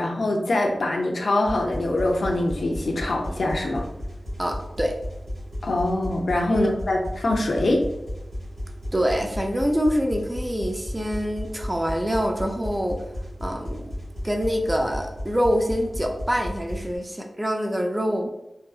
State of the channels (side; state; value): both; normal; correlation 0.95